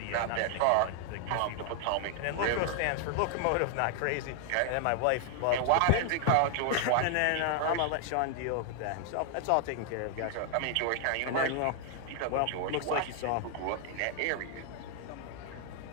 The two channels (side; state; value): both; different; correlation 0.00